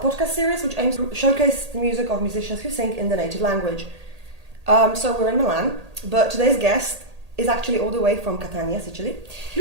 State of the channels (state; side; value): late; left; 1.8 ms